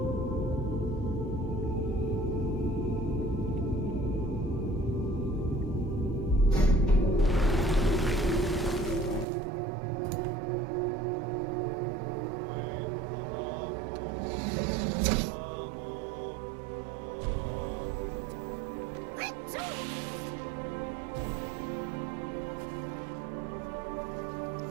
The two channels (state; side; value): drops out; left; at 9.2 s